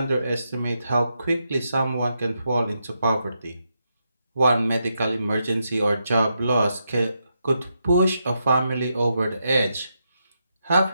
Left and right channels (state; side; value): inverted; both; correlation -0.83